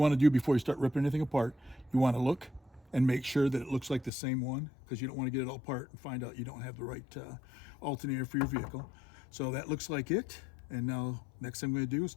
to do before you start ripping anything apart, you want to look and make sure that it looks like the same one, because you don't want to get it all apart and find out you don't have the right alternator for your vehicle. So that looks like it. And now next thing we're going to do is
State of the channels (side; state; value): right; drops out; at 4.1 s